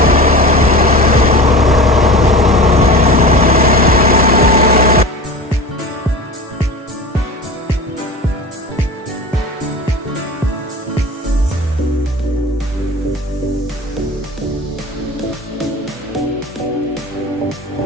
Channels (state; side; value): normal; both; correlation 0.33